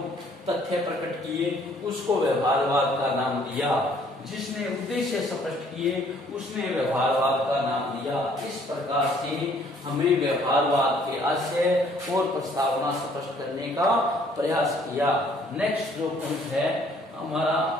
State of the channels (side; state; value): both; normal; correlation 0.61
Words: तथ्य प्रकट किए उसको व्यवहारवाद का नाम दिया। जिसने उद्देश्य स्पष्ट किए उसने व्यवहारवाद का नाम दिया। इस प्रकार से हमें व्यवहारवाद के आशय और प्रस्तावना स्पष्ट करने का प्रयास किया। नेक्स्ट जो पॉइंट है हमारा